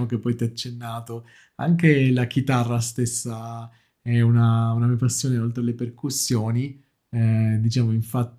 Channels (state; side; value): identical; both; correlation 1.00